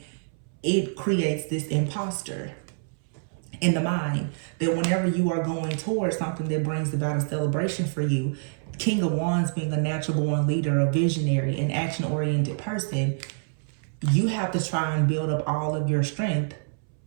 it creates this imposter in the mind that whenever you are going towards something that brings about a celebration for you, King of Wands being a natural born leader, a visionary, an action-oriented person, you have to try and build up all of your strength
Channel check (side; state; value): left; silent; 61 dB below the other